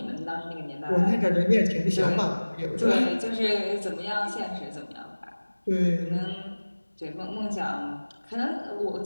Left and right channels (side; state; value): both; inverted; correlation -1.00